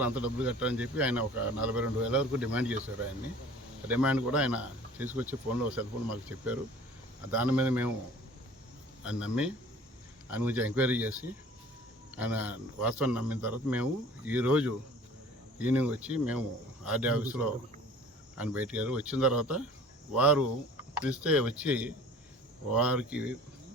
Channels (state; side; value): normal; both; correlation 0.47